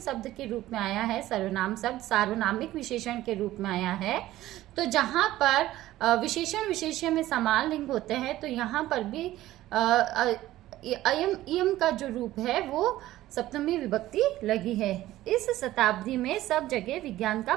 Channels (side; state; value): left; quieter; 15.3 dB